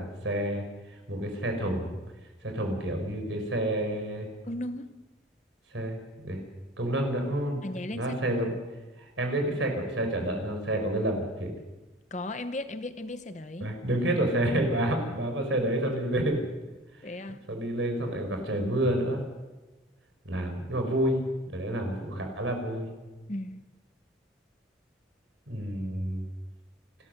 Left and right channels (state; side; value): normal; both; correlation 0.42